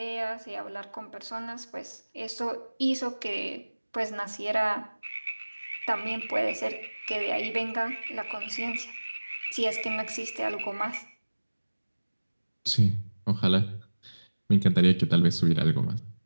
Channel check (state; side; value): inverted; both; correlation -1.00